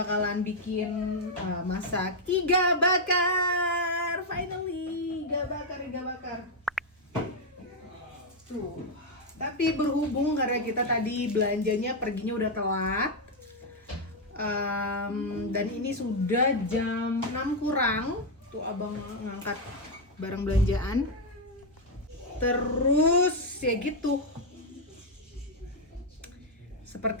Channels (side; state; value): both; normal; correlation 0.00